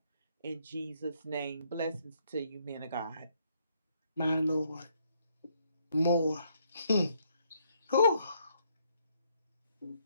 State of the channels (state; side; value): inverted; both; correlation -0.71